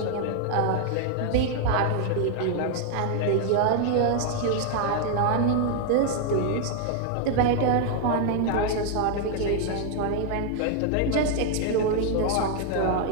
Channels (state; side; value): different; both; correlation 0.00